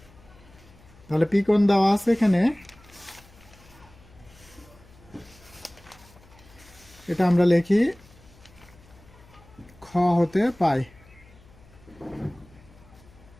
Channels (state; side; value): noise; left; hum, 25 dB below the sound